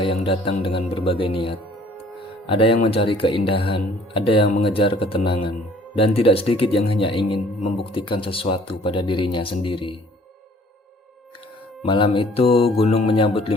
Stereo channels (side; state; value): both; normal; correlation 0.55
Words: yang datang dengan berbagai niat. Ada yang mencari keindahan, ada yang mengejar ketenangan, dan tidak sedikit yang hanya ingin membuktikan sesuatu pada dirinya sendiri. Malam itu gunung menyambut 5